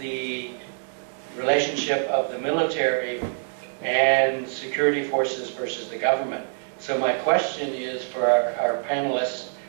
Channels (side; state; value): left; silent; digital silence